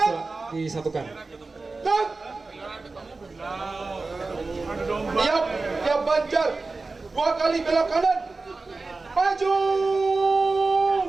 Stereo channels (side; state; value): left; quieter; 3.7 dB